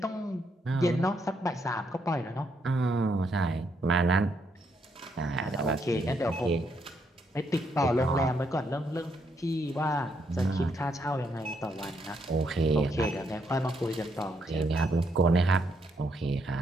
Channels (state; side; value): normal; both; correlation 0.76